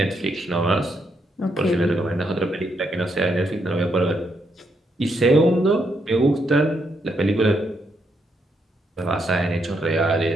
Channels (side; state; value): both; normal; correlation 0.78